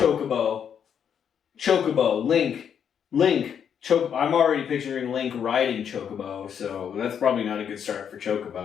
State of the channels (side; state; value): right; quieter; 8.1 dB